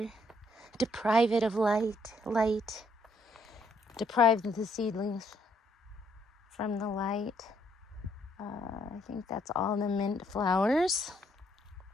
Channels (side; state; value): both; normal; correlation 0.70